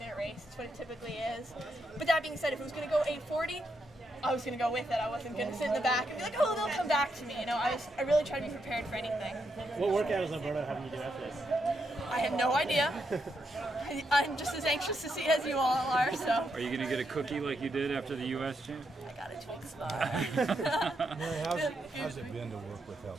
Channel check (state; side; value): normal; both; correlation 0.81